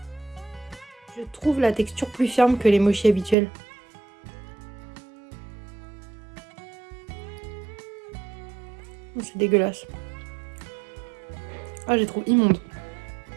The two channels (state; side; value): drops out; left; at 3.4 s